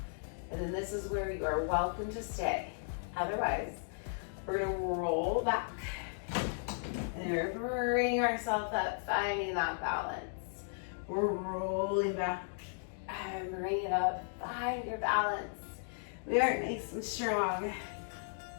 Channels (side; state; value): right; silent; digital silence